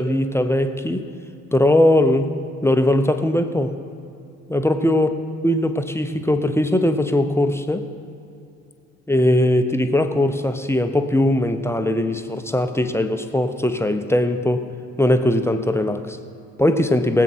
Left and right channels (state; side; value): normal; both; correlation 0.80